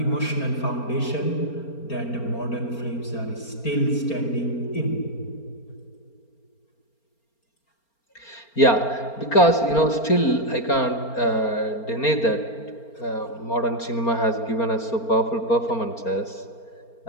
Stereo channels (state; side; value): late; right; 4.4 ms